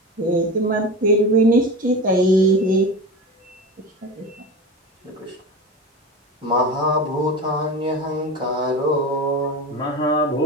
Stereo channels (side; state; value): both; normal; correlation 0.27